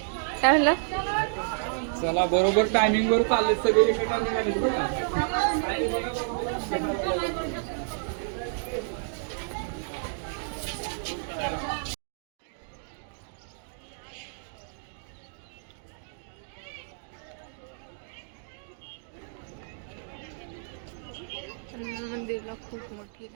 काय म्हणला? चला बरोबर टायमिंग वर चालले सगळे एका निघाले बरं का. मंदिरला खूप मोठी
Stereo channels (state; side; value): silent; left; digital silence